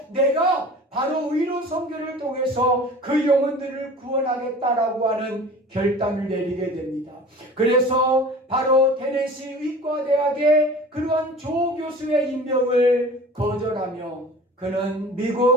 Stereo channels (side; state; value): both; normal; correlation 0.41